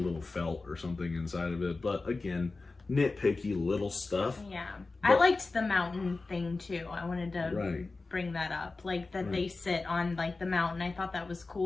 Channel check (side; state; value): right; quieter; 3.6 dB